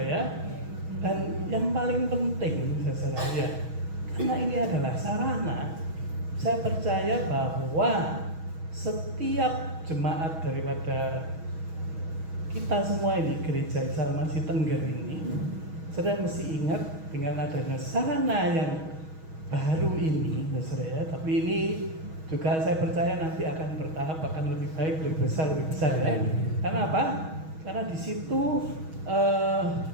ya. Dan yang paling penting, saudara ya, karena ini adalah sarana, saya percaya bahwa setiap jemaat daripada kita semua ini, Gereja Salmasi Tengger ini, saudara mesti ingat dengan adanya sarana yang baru ini, saudara ya. Tapi ini juga saya percaya nanti akan bertahap, akan lebih baik, lebih besar ya. Karena apa? Karena di situ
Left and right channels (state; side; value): late; left; 6.3 ms